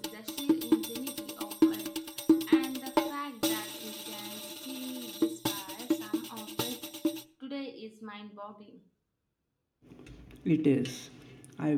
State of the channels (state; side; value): identical; both; correlation 1.00